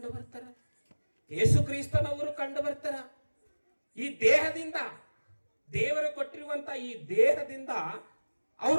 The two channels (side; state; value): both; inverted; correlation -1.00